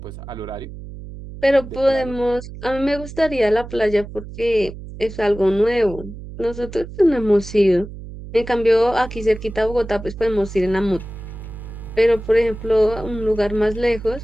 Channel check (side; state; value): right; noise; hum, 13 dB below the sound